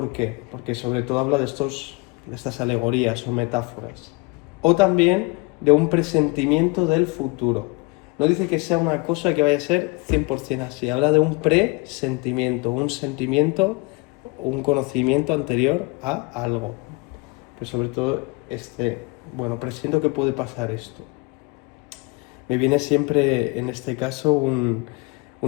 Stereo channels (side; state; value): right; quieter; 27.3 dB